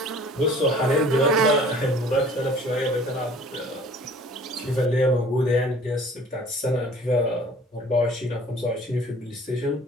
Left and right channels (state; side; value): normal; both; correlation 0.50